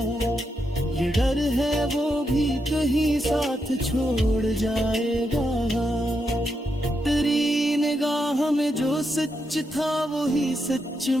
ये डर है वो भी कहीं साथ छोड़ जाएगा। तेरी निगाह में जो सच था वही सच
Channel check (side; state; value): both; normal; correlation 0.83